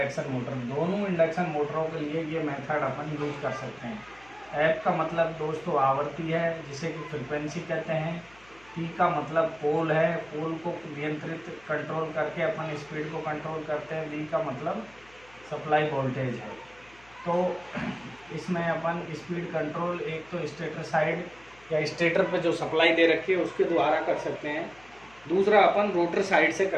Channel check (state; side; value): noise; left; hum, 27 dB below the sound